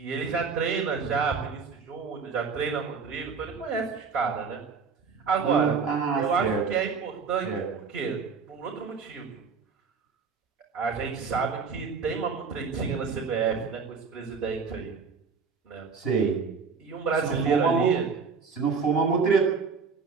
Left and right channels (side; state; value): left; quieter; 5.3 dB